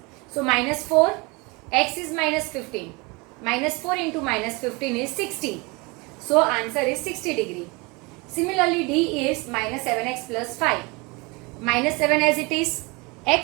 So minus 4, x is minus 15. Minus 4 into minus 15 is 60. So answer is 60 degree. Similarly, D is minus 7x plus 5. Minus 7 as it is,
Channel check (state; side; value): quieter; left; 26.4 dB